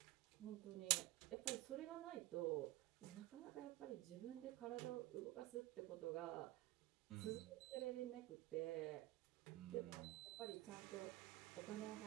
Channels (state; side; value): quieter; left; 17.7 dB